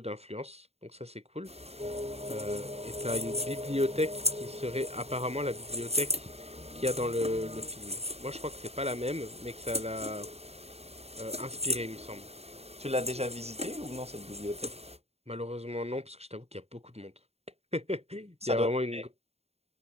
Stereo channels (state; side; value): late; left; 0.30 ms